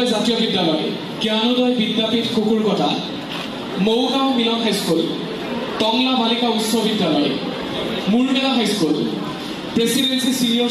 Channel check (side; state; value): both; identical; correlation 1.00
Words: জাতীয় বিদ্যালয় জ্ঞানোদয় বিদ্যাপীঠ কুকুৰকটা মৌগাঁও মিলন হাইস্কুল টংলা বালিকা উচ্চ বিদ্যালয় Murmela high school presidency senior